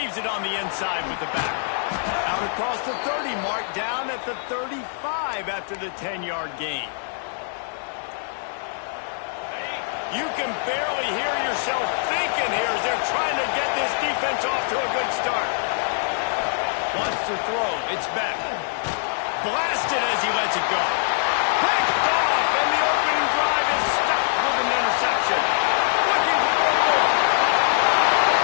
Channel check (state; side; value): silent; right; digital silence